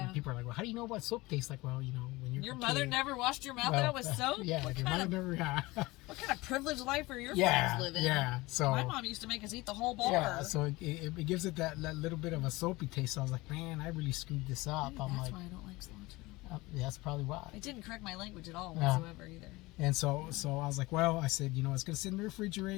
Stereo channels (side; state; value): right; quieter; 21.4 dB